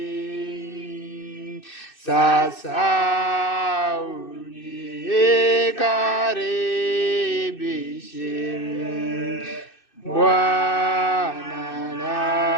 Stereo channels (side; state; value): right; late; 2.6 ms